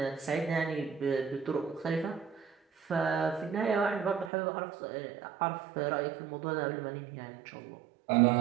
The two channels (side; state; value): left; drops out; at 4.3 s